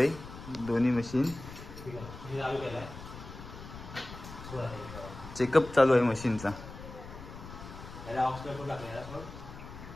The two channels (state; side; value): noise; left; rumble, 13 dB below the sound